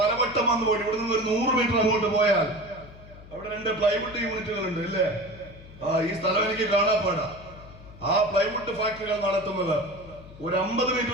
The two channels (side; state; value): left; noise; hum, 18 dB below the sound